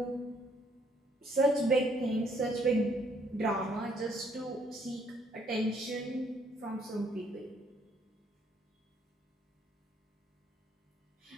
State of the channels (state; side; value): normal; both; correlation 0.67